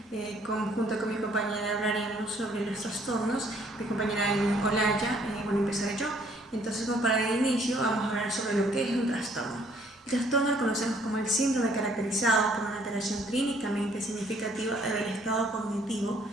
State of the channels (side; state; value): both; normal; correlation 0.63